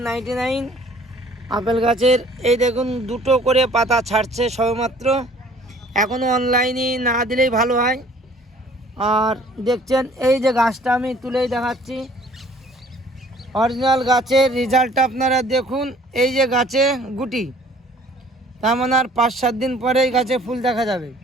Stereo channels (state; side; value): normal; both; correlation 0.54